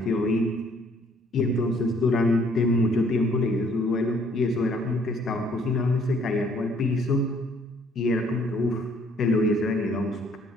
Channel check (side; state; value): both; normal; correlation 0.62